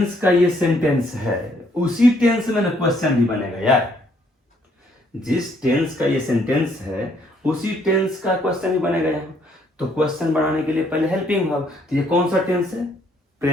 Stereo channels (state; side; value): normal; both; correlation 0.67